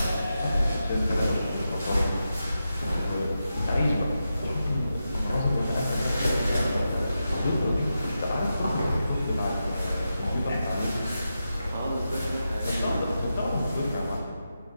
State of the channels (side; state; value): both; inverted; correlation -0.89